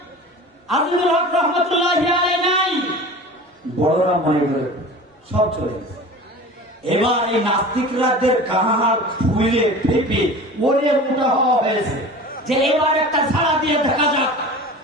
আজিজুল হক রহমতুল্লাহি আলাইহি নাই, বড়রা মনে করে সব চলে গেছে। এবার এই নাস্তিকরাদের কাহার ফুলে ফেপে ওরে মোটা হওয়া হয়েছে যে এবার একটা ঝাড়া দিয়ে দেখা যাক।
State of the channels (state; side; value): normal; both; correlation 0.37